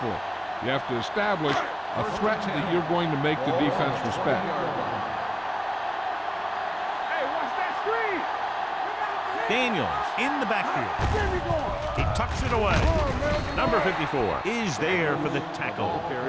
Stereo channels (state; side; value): identical; both; correlation 1.00